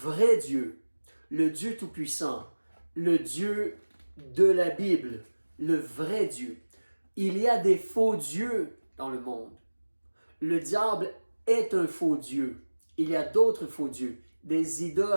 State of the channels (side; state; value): both; inverted; correlation -1.00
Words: Dieu, le Dieu Tout-Puissant, le Dieu de la Bible, le vrai Dieu, il y a des faux dieux dans le monde. Le diable est un faux Dieu. Il y a d'autres faux dieux, des